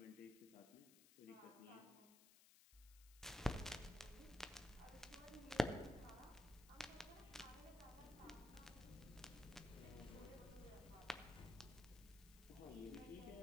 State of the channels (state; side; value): noise; left; hiss, 19 dB below the sound